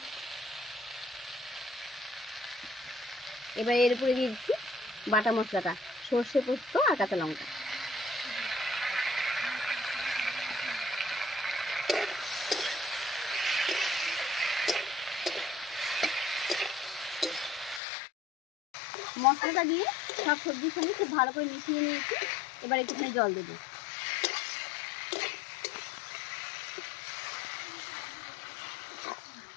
এবার এর উপরে দিয়ে দিচ্ছি বাটা মশলাটা, সর্ষে পোস্ত আর কাঁচা লঙ্কা। মশলাটা দিয়ে সব সবজির সঙ্গে খুব ভালো করে মিশিয়ে নিয়েছি। এবার একটুখানি জল দেবো।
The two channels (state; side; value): drops out; right; at 17.8 s